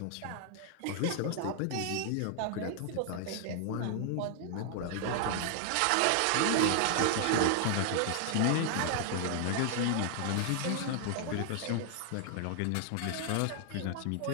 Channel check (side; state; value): both; different; correlation 0.00